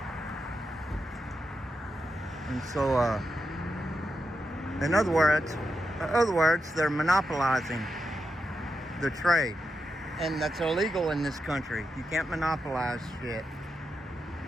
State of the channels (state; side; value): normal; both; correlation 0.86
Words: And so, in other words, they're monopolizing the trade. And that's illegal in this country. You can't monopolize shit.